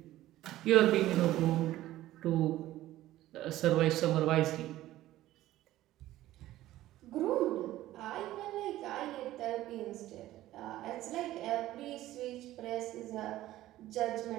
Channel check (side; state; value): left; quieter; 15.0 dB